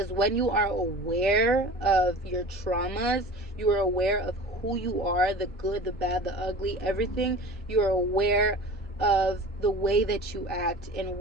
when you are aware of your traumas, you are aware of who you are, the good, the bad, the ugly, everything. You are aware of the way that you act and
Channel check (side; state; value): both; normal; correlation 0.38